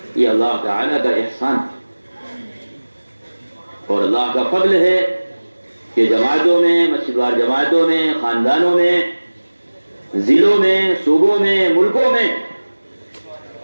یہ اللہ تعالی کا احسان اور اللہ کا فضل ہے کہ جماعتوں میں, مسجد وار جماعتوں میں, خاندانوں میں, ضلعوں میں, صوبوں میں, ملکوں میں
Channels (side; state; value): both; inverted; correlation -1.00